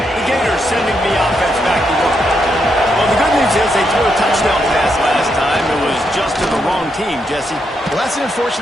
Sending the offense back to work. Well, the good news is they threw a touchdown pass last time. It was just to the wrong team, Jesse. Well, that's an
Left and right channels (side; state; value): both; normal; correlation 0.80